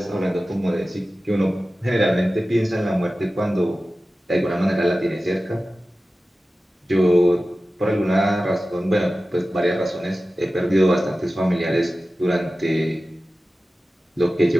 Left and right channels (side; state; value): both; normal; correlation 0.95